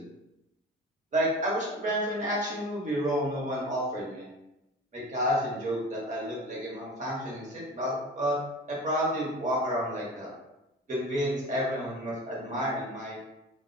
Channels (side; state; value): both; normal; correlation 0.35